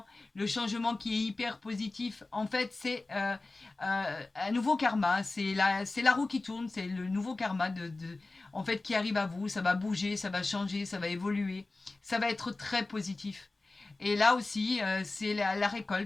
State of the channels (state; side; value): quieter; right; 3.3 dB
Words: Le changement qui est hyper positif. En fait, c'est un nouveau karma. C'est la roue qui tourne. C'est le nouveau karma en fait, qui arrive à vous. Ça va bouger, ça va changer, ça va évoluer. Ça va être très positif. Et là aussi, c'est la